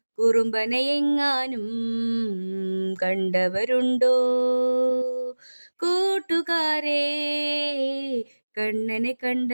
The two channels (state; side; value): inverted; both; correlation -1.00